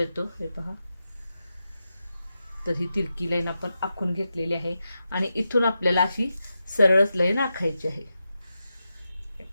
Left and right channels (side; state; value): both; inverted; correlation -0.89